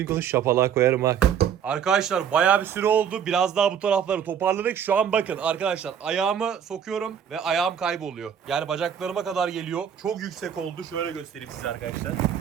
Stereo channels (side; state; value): left; quieter; 8.3 dB